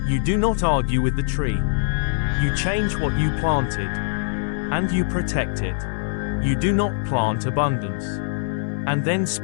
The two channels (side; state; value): right; silent; digital silence